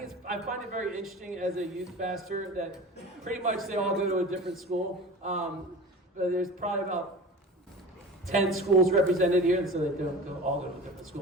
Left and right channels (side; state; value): both; normal; correlation 0.36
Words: find it very interesting as a youth pastor that pretty much they all go to a different school. But there's probably about 10 schools represented here, and so they don't all go to a different school.